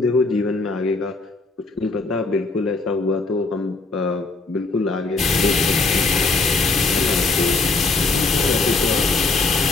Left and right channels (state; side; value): quieter; right; 3.7 dB